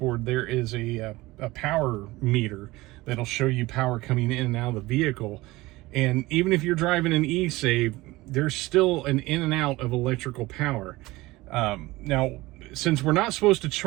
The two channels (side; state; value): left; quieter; 19.9 dB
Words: there is a power meter that'll show you power coming in and out of the vehicle. And even if you're driving an eSave, there's still an in and out of electrical power. Now, since we're not supposed to